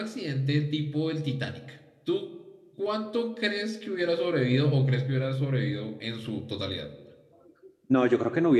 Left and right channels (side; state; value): both; identical; correlation 1.00